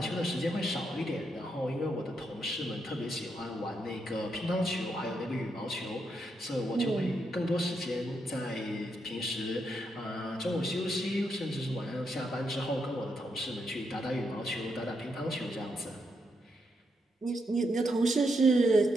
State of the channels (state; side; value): normal; both; correlation 0.80